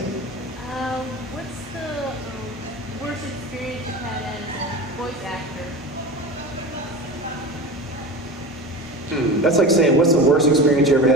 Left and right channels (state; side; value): normal; both; correlation 0.29